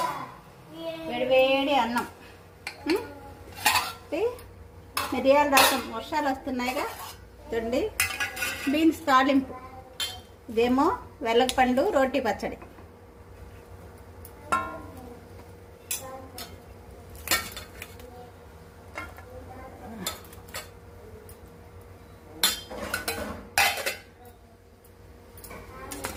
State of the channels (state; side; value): identical; both; correlation 1.00